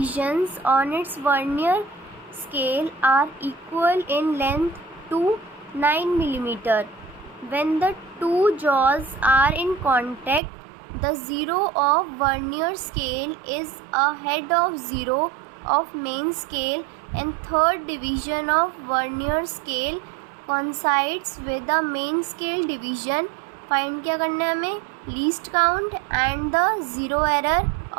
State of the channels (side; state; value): left; drops out; at 10.4 s